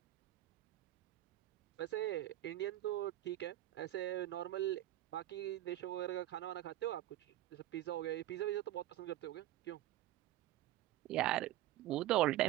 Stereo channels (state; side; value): quieter; left; 14.4 dB